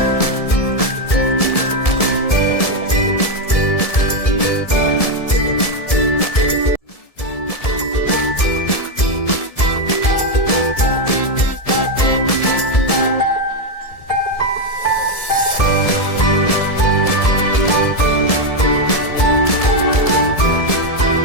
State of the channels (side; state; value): right; late; 1.7 ms